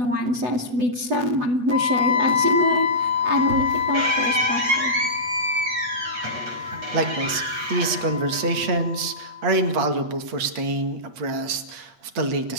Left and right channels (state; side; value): late; left; 8.2 ms